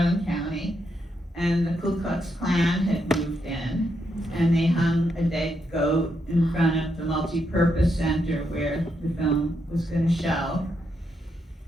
County, and the Ku Klux Klan had moved in, and they hung a dead goat in front of the multi-purpose center where the film was going to show.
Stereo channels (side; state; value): both; normal; correlation 0.80